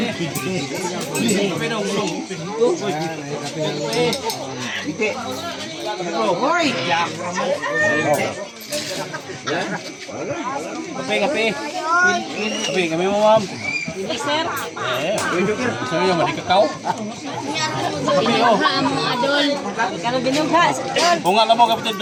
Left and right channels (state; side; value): identical; both; correlation 1.00